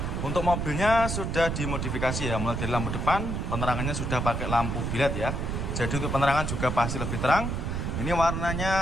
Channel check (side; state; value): right; noise; rumble, 2 dB below the sound